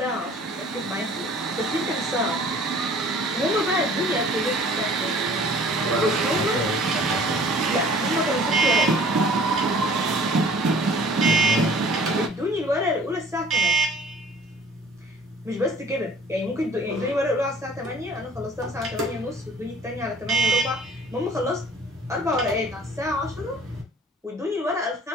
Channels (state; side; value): normal; both; correlation 0.51